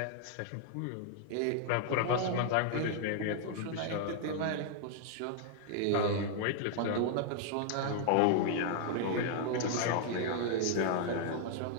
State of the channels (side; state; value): both; different; correlation -0.01